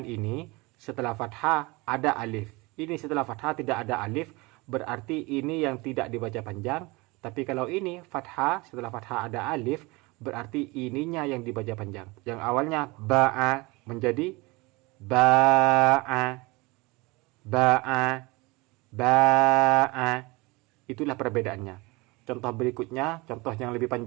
ini, setelah fathah ada alif. Ini setelah fathah tidak ada alif, berarti ini yang tidak dibaca panjang. Tapi kalau ini fathah, setelah fathah ada alif, berarti ininya yang dibaca panjang. Yang awalnya ba'a menjadi ba'a, ba'a, ba'a. Itulah perbedaannya. Contoh berikutnya, contoh yang lebih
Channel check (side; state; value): left; quieter; 24.3 dB